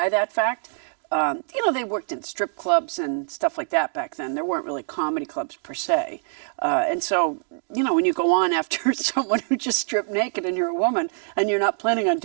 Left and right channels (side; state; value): left; silent; digital silence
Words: that fact. You know, they worked in strip clubs and stuff like that back then. There weren't really comedy clubs per se. And so, you know, when you go on after someone who just stripped naked and you're a woman and you're not planning on